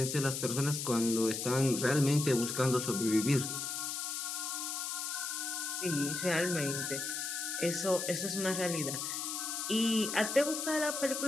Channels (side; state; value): left; noise; hiss, 3 dB below the sound